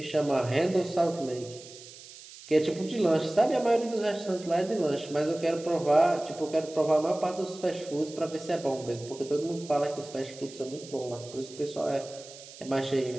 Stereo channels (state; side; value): noise; right; hiss, 17 dB below the sound